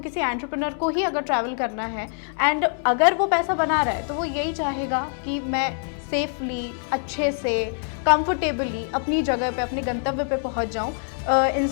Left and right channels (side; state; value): right; silent; 58 dB below the other